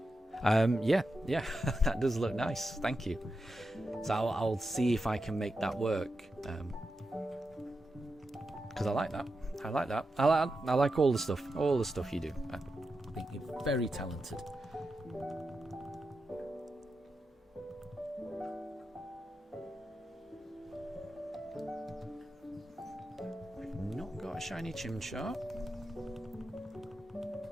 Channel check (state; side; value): normal; both; correlation 0.89